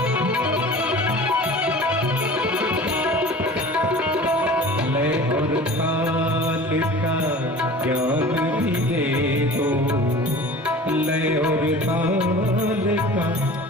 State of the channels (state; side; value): normal; both; correlation 0.41